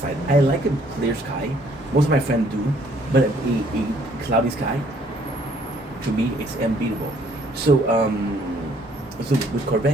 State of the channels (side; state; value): both; normal; correlation 0.63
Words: I like a clear sky. Most of my friends do, but a cloudy sky, to me, it's unbeatable. So, so with